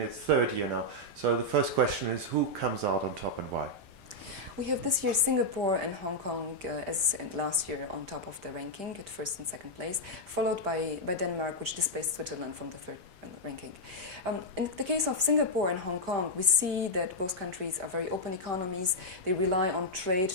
third year now. So the first question is, who comes out on top and why? We have this year Singapore and Hong Kong as last year on top of the ranking at first and second place, followed by Denmark, which displaced Switzerland from the third ranking. In the case of Singapore and Hong Kong, we see that both countries are very open economies. They rely on trade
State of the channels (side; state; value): left; late; 5.1 ms